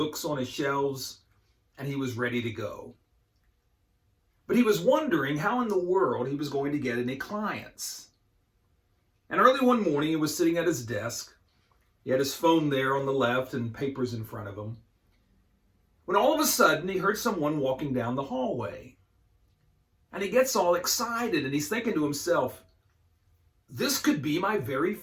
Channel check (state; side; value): identical; both; correlation 1.00